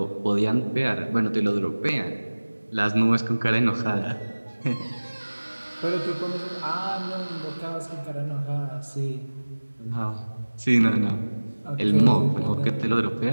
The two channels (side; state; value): both; inverted; correlation -1.00